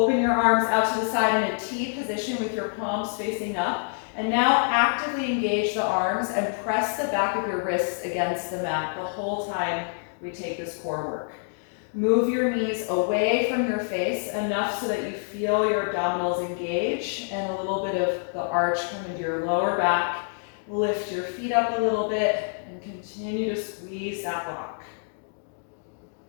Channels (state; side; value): silent; right; digital silence